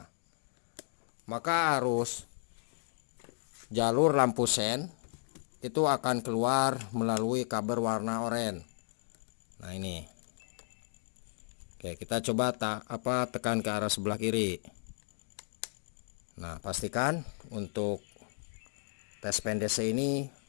maka arus jalur lampu sen itu akan keluar melalui kabel warna oranye. Nah, ini. Oke, kita coba tekan ke arah sebelah kiri. Nah, pastikan untuk tes pen DC ini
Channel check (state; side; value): silent; right; digital silence